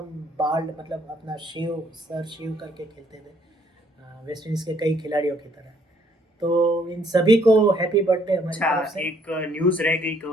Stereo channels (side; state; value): both; normal; correlation 0.65